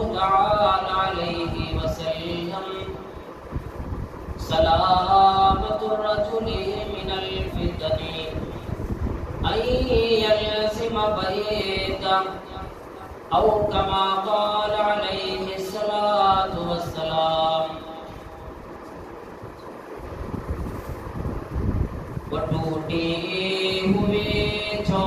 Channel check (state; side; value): identical; both; correlation 1.00